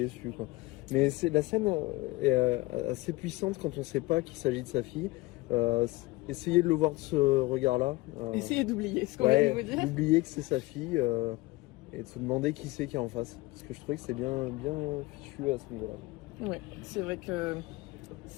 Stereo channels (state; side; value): quieter; right; 21.0 dB